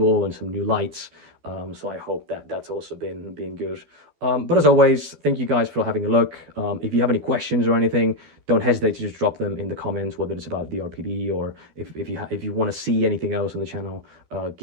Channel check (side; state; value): left; late; 12 ms